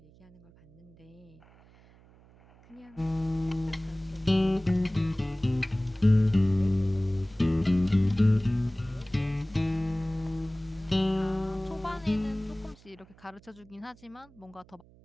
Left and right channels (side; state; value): right; noise; hum, 26 dB below the sound